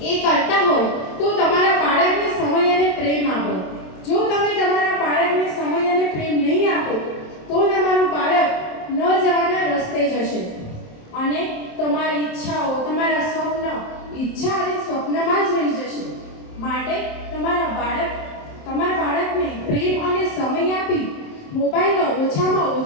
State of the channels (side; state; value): right; late; 27 ms